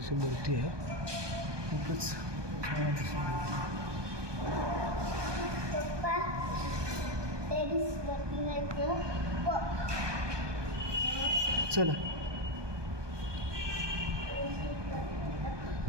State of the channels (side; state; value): left; late; 1.2 ms